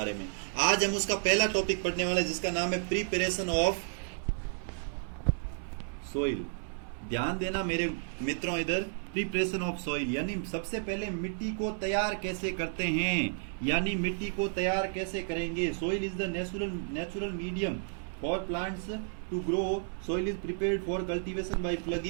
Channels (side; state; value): left; silent; 56 dB below the other